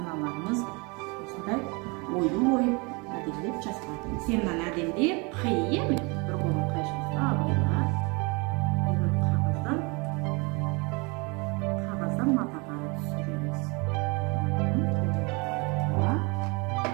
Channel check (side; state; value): left; quieter; 29.3 dB